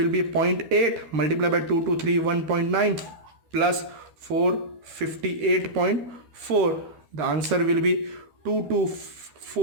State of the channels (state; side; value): late; left; 12 ms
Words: be 0.8 multiplied by 2231.9 plus 458.4. The answer will be